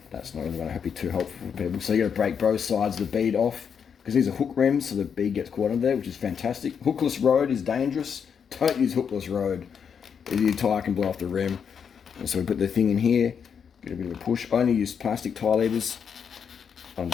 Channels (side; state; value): right; quieter; 7.0 dB